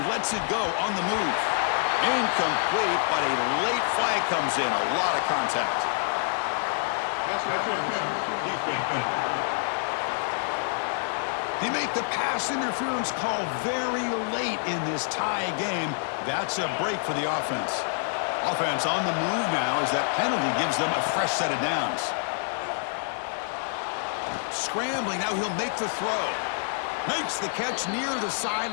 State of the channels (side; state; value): right; silent; digital silence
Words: lets it go on the move. Incomplete, but a late flag comes in. A lot of contact. They make the pass interference call very late in this tie game. That's a break for the offense. Offense on the move now as that penalty gives them a fresh set of downs. Scrambling, now he'll make the throw. Makes the catch near the